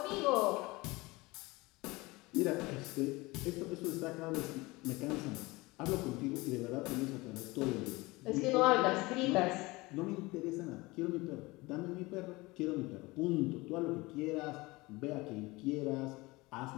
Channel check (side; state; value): right; quieter; 22.3 dB